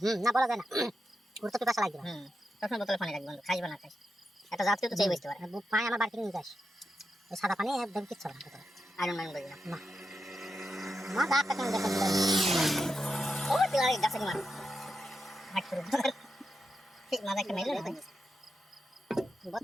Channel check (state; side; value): normal; both; correlation 0.87